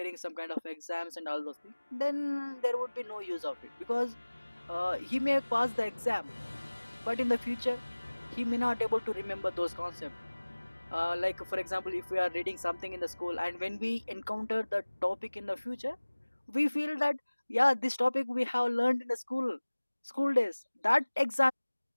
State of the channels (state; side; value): inverted; both; correlation -1.00